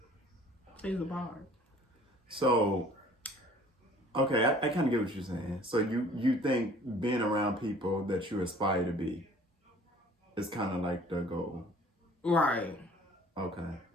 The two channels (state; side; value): normal; both; correlation 0.52